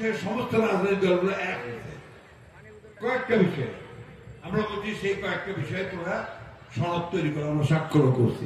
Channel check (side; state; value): both; identical; correlation 1.00